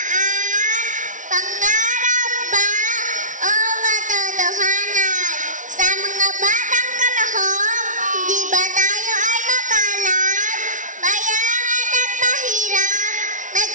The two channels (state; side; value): late; left; 0.37 ms